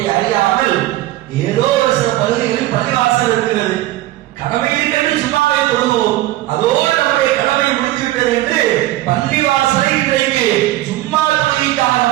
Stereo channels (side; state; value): left; quieter; 16.0 dB